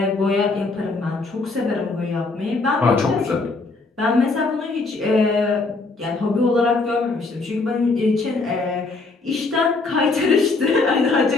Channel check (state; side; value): quieter; right; 3.7 dB